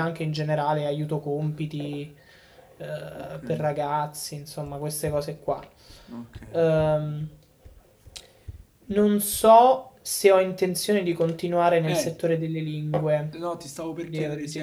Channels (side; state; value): both; identical; correlation 1.00